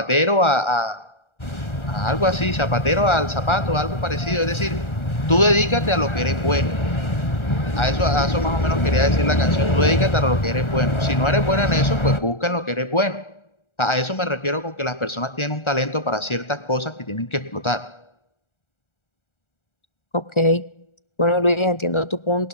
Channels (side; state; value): right; late; 1.4 ms